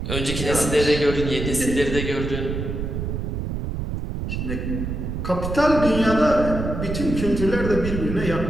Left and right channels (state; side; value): noise; right; rumble, 4 dB below the sound